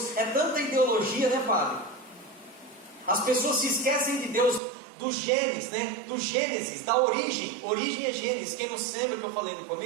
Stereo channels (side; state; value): left; drops out; at 4.6 s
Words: É tanta ideologia, né, Fábio? As pessoas se esquecem de Deus, do Gênesis, né? Do Gênesis, da origem. Origem é Gênesis. Quem não sabe o que eu falei no